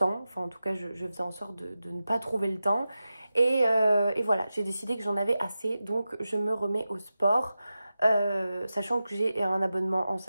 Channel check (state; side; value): inverted; both; correlation -0.93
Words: enfin en tout cas je faisais en sorte de ne pas trouver le temps et voilà, j'ai décidé que j'en avais assez, donc je me remets au sport, sachant que j'ai un abonnement en